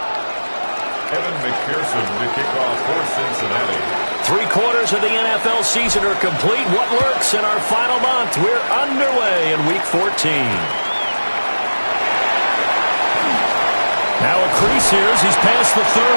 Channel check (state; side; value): inverted; both; correlation -1.00